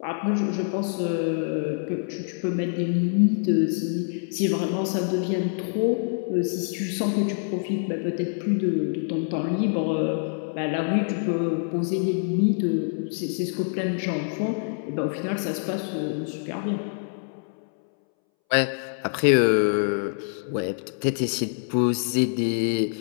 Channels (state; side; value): silent; right; 61 dB below the other